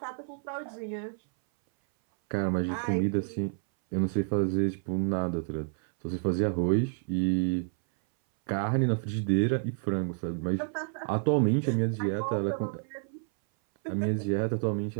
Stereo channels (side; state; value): left; silent; 58 dB below the other